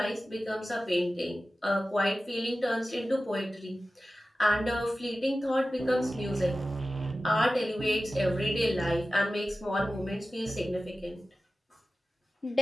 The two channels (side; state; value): both; normal; correlation 0.95